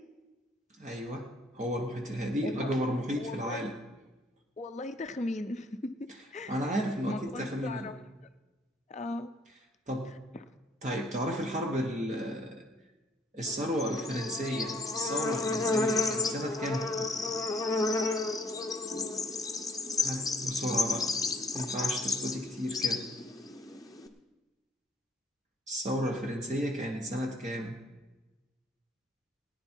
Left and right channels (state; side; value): normal; both; correlation 0.63